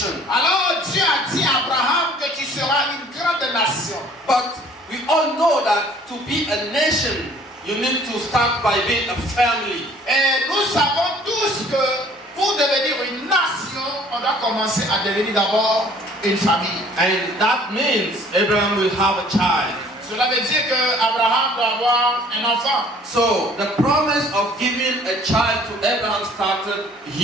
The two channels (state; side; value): normal; both; correlation 0.54